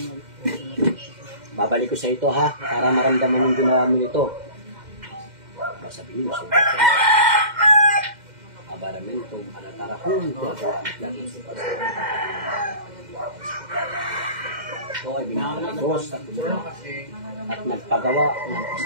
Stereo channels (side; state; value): left; late; 2.1 ms